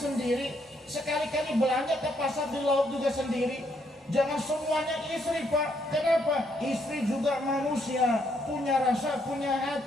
sekali-kali belanja ke pasar di laut juga sendiri. Jangan semuanya istri, Pak. Kenapa? Istri juga manusia, punya rasa, punya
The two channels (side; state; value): both; normal; correlation 0.73